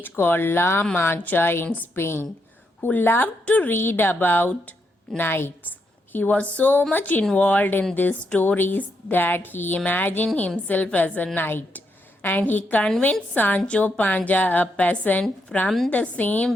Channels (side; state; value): both; normal; correlation 0.80